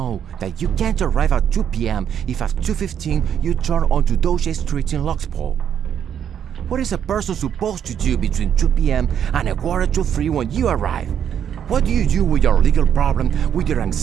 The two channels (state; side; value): quieter; left; 8.9 dB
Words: that you can't arrive at 2 p.m. if at 2:15 you turn onto Doge Street in Lococo. What is a person supposed to do between 2 p.m. and 2:45 when you arrive? What do you do with your legal problem, with your